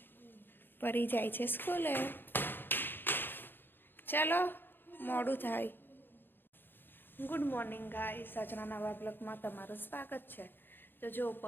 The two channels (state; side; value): late; right; 0.098 ms